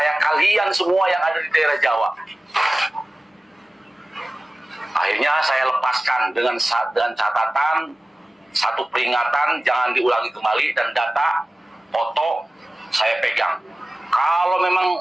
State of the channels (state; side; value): normal; both; correlation 0.97